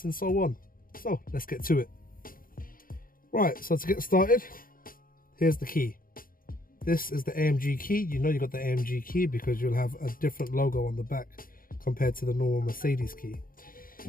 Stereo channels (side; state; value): right; late; 0.41 ms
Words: and so on. So let's get to it. Right, so to get started, here's the key. This is the AMG key. You know you got the AMG key because you'll have a different logo on the back compared to the normal Mercedes key.